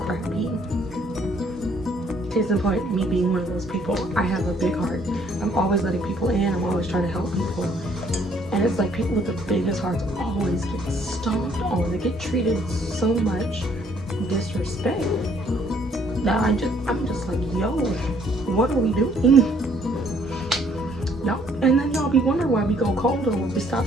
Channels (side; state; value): both; normal; correlation 0.64